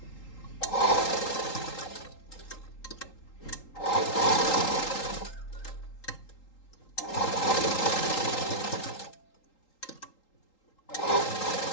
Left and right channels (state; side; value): late; right; 3.8 ms